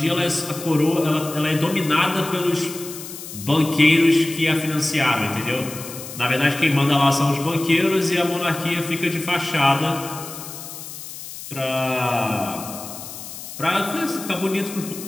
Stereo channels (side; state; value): left; noise; hiss, 12 dB below the sound